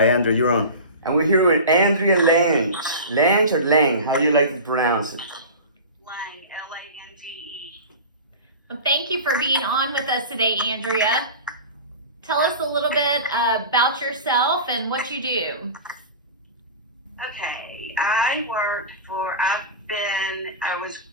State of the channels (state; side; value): inverted; both; correlation -0.31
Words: Andrea, you're on. And we're here with Andrea Lange. Lange or Lange? How do you like to pronounce it? Lange, Lange. Well, thank you for being on with us today, Andrea. Tell us a little bit about yourself and what you do. Okay, I grew up